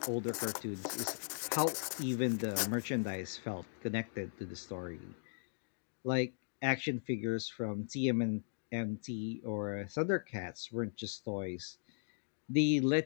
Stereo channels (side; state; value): right; silent; digital silence